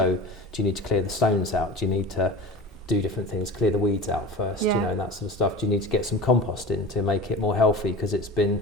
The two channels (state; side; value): normal; both; correlation 0.34